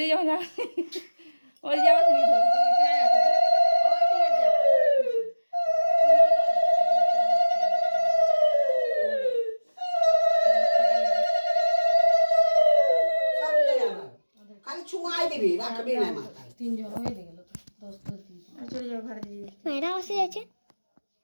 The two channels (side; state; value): both; inverted; correlation -1.00